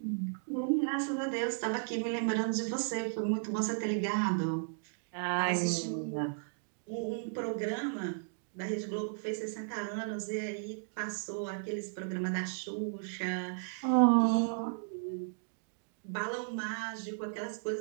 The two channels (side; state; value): left; silent; digital silence